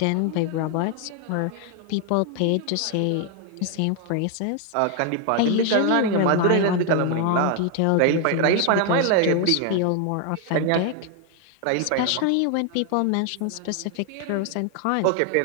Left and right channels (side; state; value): both; different; correlation 0.01